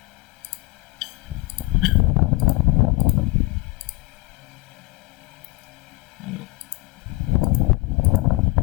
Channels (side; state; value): right; quieter; 22.0 dB